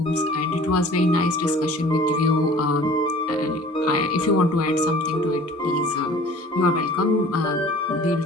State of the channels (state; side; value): normal; both; correlation 0.47